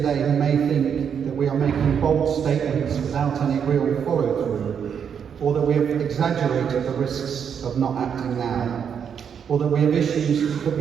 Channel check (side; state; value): left; quieter; 7.6 dB